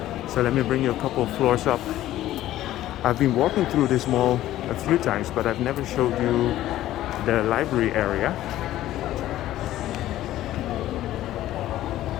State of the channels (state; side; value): quieter; right; 14.1 dB